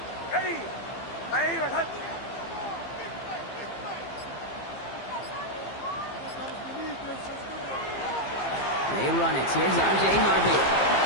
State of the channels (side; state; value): right; late; 15 ms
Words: Ready. Ready. Return. They run it. Here's R.J. Harvey.